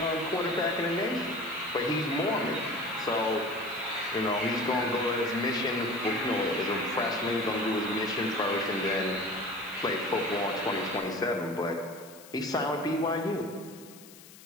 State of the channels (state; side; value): noise; left; hiss, 20 dB below the sound